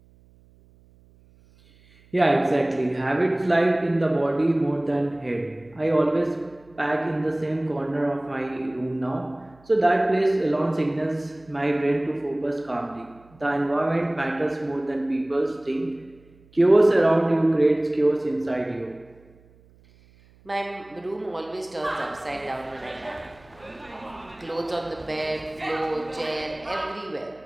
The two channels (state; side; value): noise; right; hum, 28 dB below the sound